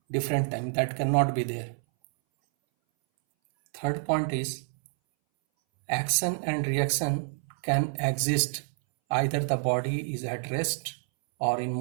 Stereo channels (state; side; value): silent; left; 59 dB below the other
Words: different time. That cannot be there. Third point is, action and reaction can exist either the body is at rest or in